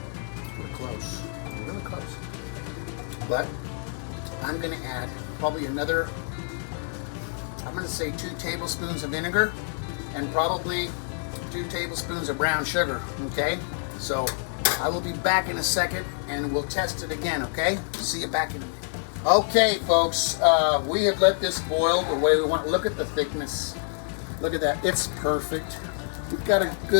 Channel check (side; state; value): right; silent; 60 dB below the other